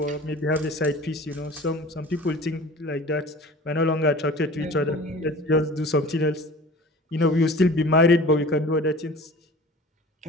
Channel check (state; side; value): normal; both; correlation 0.42